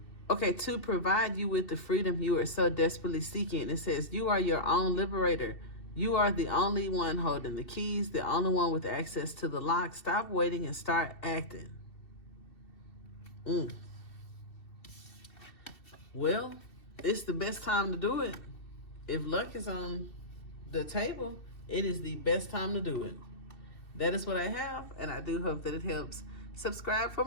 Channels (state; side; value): late; right; 2.7 ms